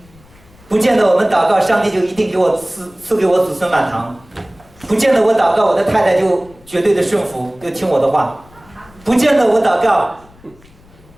不见得我们祷告上帝就一定给我赐给我子孙满堂，不见得我祷告我的太太就绝对的顺服，就听我的话，不见得我祷告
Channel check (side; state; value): left; noise; rumble, 27 dB below the sound